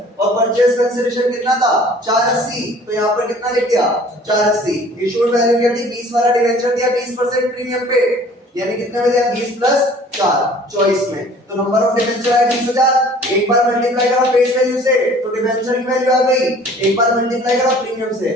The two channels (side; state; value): both; normal; correlation 0.51